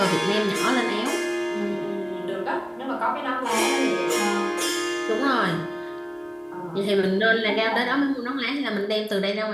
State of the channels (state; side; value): identical; both; correlation 1.00